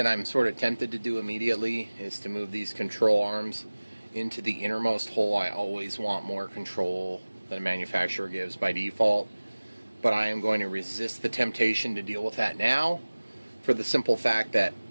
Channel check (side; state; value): both; inverted; correlation -1.00